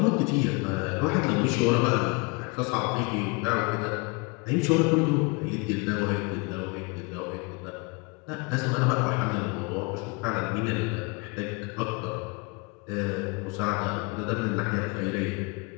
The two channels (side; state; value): right; quieter; 29.6 dB